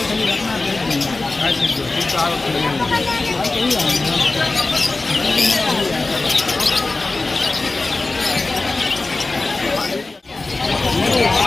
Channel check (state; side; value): quieter; right; 3.4 dB